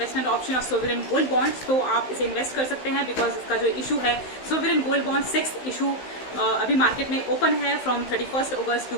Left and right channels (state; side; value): late; right; 16 ms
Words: option of sovereign gold bonds, तो आप इसे इन्वेस्ट कर सकते हैं, बिकॉज इसका जो इशू है sovereign gold bond 6th issue अभी मार्केट में ओपन है from 31 August to